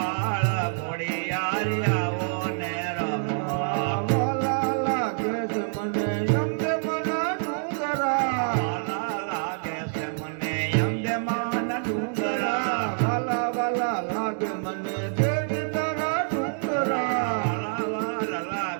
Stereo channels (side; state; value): left; silent; digital silence